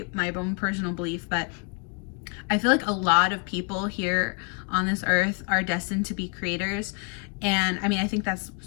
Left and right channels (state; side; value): quieter; right; 35.7 dB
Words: my own personal belief, but I feel like a lot of people here on this earth are destined to be creators. And I mean, I think that's